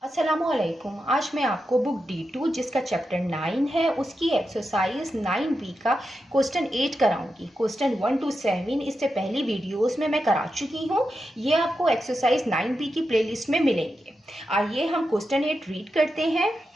अस्सलामुअलैकुम। आज मैं आपको बुक D2 जिसका चैप्टर 9 है उसकी एक्सरसाइज 9B का क्वेश्चन 8 कराऊंगी। क्वेश्चन 1 to 7 इससे पहली वीडियोस में मैं करा चुकी हूँ। ये आपको एक्सरसाइज 9B की प्लेलिस्ट में मिलेंगे। आइए हम क्वेश्चन 8 रीड करते हैं।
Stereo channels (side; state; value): both; normal; correlation 0.88